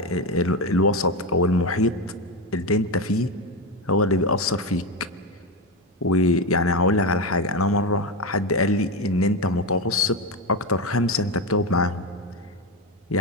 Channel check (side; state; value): both; normal; correlation 0.14